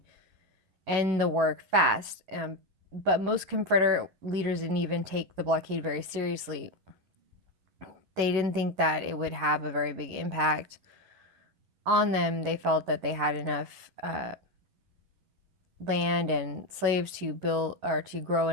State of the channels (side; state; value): left; late; 11 ms